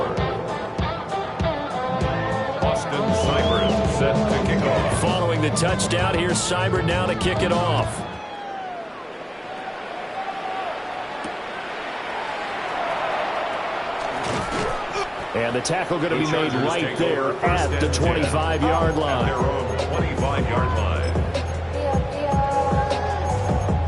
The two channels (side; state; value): both; identical; correlation 1.00